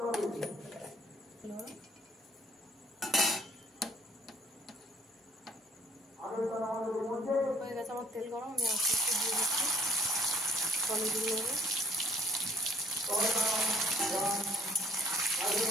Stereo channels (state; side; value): normal; both; correlation 0.60